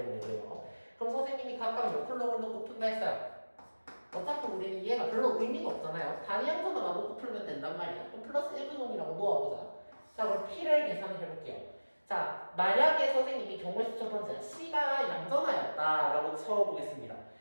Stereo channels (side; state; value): both; inverted; correlation -1.00